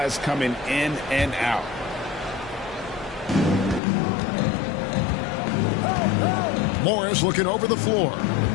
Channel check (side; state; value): right; drops out; at 3.8 s